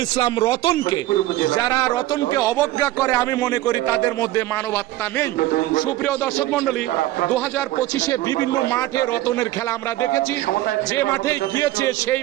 ইসলাম রতনকে। যারা রতনকে অবজ্ঞা করে আমি মনে করি তাদের মধ্যে মানবতা নেই। সুপ্রিয় দর্শক মন্ডলী, 2025-এ বিভিন্ন মাঠে রতনের খেলা আমরা দেখেছি। যে মাঠে গিয়েছে সেই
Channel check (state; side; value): quieter; left; 16.1 dB